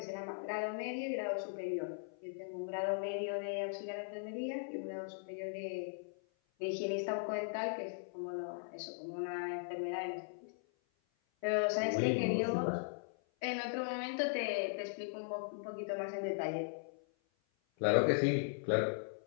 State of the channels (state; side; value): silent; right; 52 dB below the other